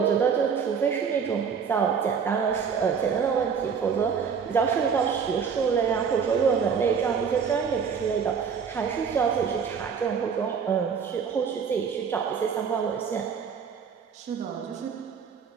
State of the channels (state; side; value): quieter; left; 6.5 dB